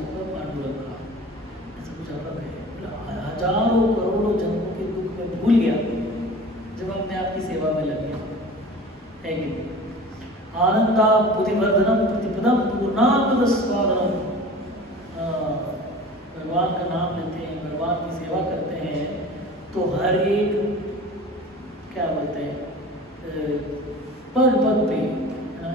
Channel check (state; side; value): normal; both; correlation 0.40